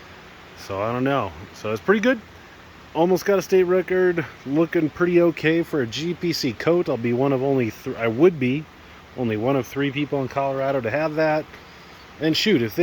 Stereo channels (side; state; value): both; identical; correlation 1.00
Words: So I don't know. So it's pretty good. Almost got a state record. Looking pretty okay for a GPC coat. I'll be one of only I would be only one of 3 people in Colorado to have that. And shoot, if